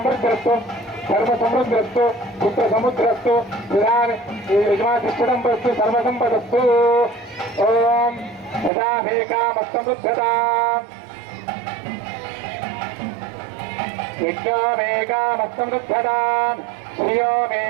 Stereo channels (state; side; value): drops out; left; at 8.7 s